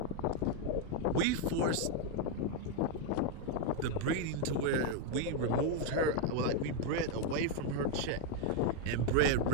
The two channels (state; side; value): different; both; correlation 0.02